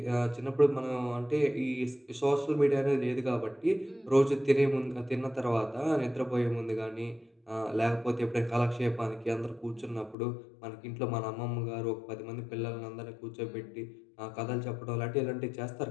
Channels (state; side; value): drops out; right; at 10.2 s